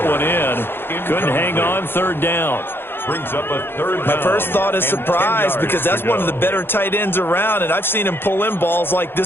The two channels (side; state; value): right; late; 0.10 ms